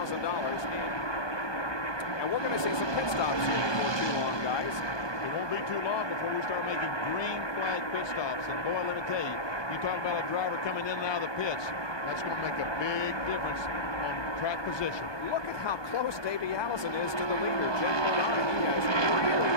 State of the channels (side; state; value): right; late; 1.2 ms